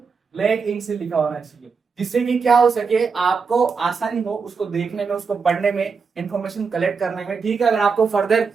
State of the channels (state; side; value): quieter; left; 5.3 dB